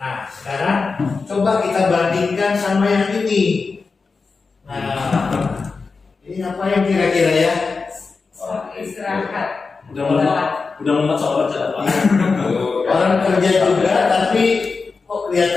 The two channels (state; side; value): quieter; right; 4.5 dB